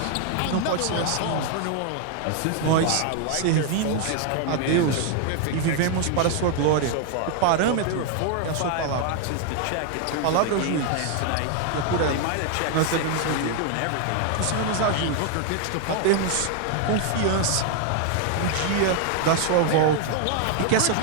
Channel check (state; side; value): different; both; correlation 0.00